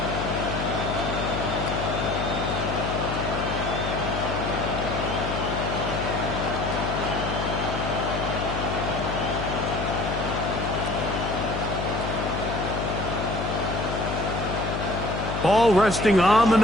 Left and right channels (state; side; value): noise; left; hum, 3 dB below the sound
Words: Ball resting on the